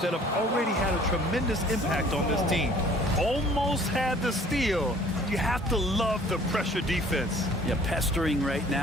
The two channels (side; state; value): both; normal; correlation 0.53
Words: that have already had a tremendous impact on this team. Almost had the steal. You have to love the pressure defense. Yeah, pestering right